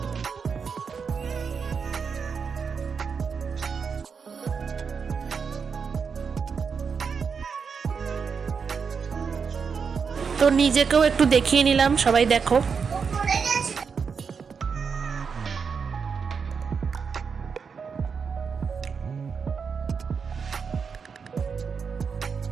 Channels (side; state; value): left; quieter; 5.9 dB